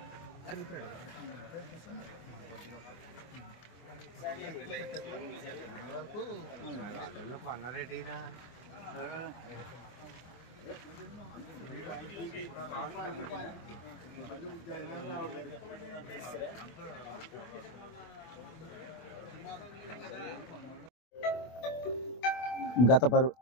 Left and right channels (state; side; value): late; right; 24 ms